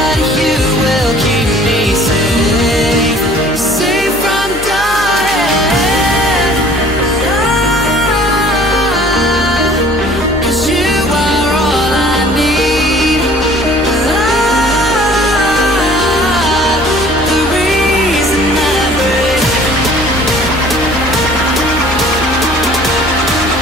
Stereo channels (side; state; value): left; noise; hum, 13 dB below the sound